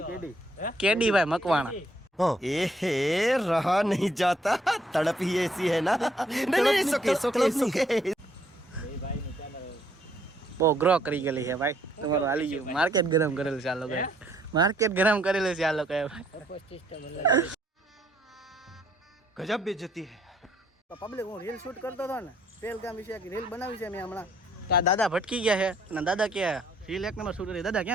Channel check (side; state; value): both; normal; correlation 0.67